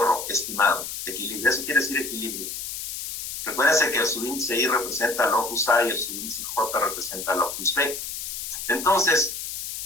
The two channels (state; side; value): noise; left; hiss, 6 dB below the sound